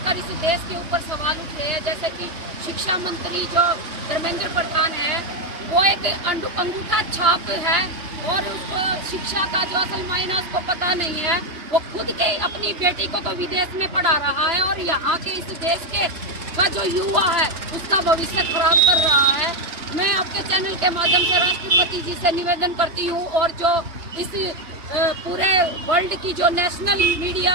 इस देश के ऊपर सवाल उठ रहे हैं, जैसे कि शिक्षा मंत्री जो धर्मेंद्र प्रधान है, वो एक अंगूठा छाप है और उसको शिक्षा का जो असल मायना उसको पता नहीं है। वो खुद के अपनी बेटी को तो विदेश में पढ़ा रहा है और यहाँ के इस देश के का जो युवा है उसका भविष्य खराब कर रहा है। मैं आपके चैनल के माध्यम से राष्ट्रपति जी से निवेदन करती हूँ, और जो इस पूरे वर्ल्ड की जो नेशनल मीडिया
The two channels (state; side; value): late; left; 3.0 ms